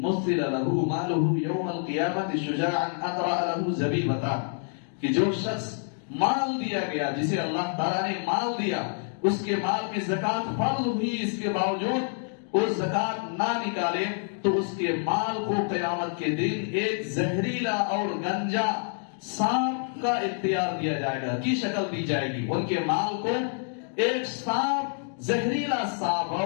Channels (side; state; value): right; silent; 57 dB below the other